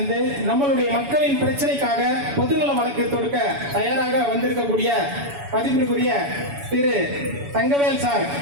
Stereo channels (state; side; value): late; left; 7.1 ms